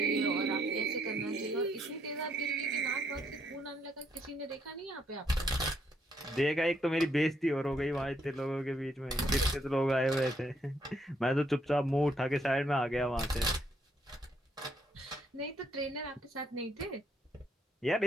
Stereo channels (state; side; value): normal; both; correlation 0.72